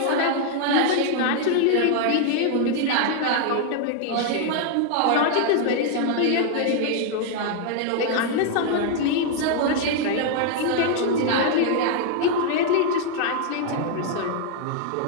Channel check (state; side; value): different; both; correlation 0.00